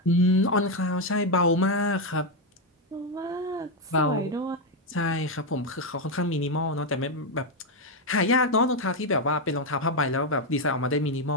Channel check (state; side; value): normal; both; correlation 0.04